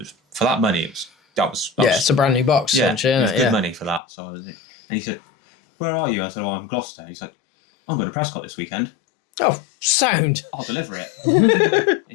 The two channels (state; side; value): drops out; right; at 4.0 s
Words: for that money, that was it's a brand new box. Yeah, it was good money for that. So and he said, where are you? I said, I'm Gloucester. He said, I'm going to Prescott this weekend. Oh, sound. I'll deliver it. He